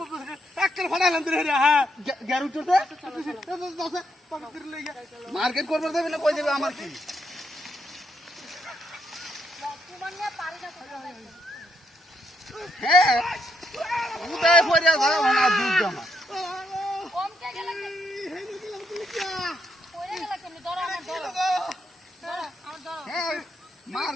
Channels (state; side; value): normal; both; correlation 0.77